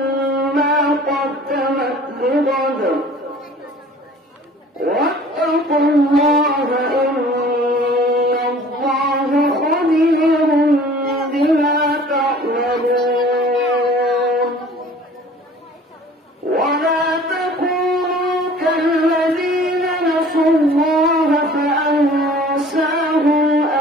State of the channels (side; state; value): both; normal; correlation 0.48